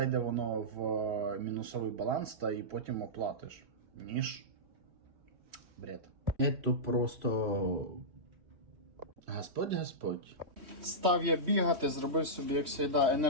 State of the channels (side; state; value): left; late; 3.1 ms